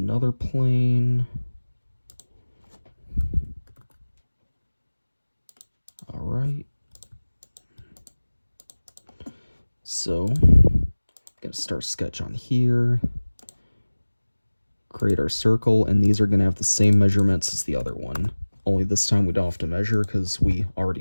plane. All right. So, gonna start sketch on here. Create our circle, and these are gonna have the same measurements as the other one. Only this time we don't have to measure because we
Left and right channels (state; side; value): inverted; both; correlation -1.00